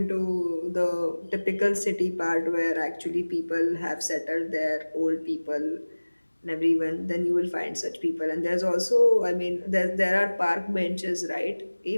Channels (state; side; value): inverted; both; correlation -1.00